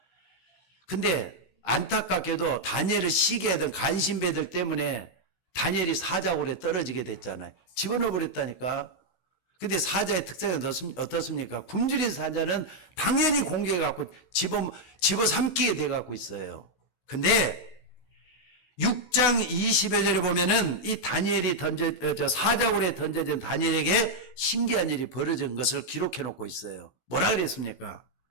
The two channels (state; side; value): late; right; 16 ms